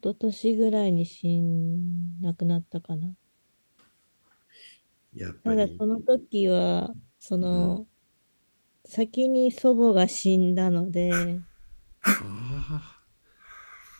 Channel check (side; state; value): both; inverted; correlation -1.00